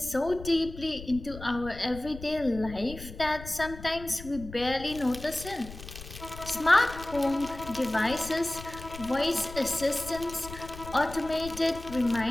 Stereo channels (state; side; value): noise; left; rumble, 13 dB below the sound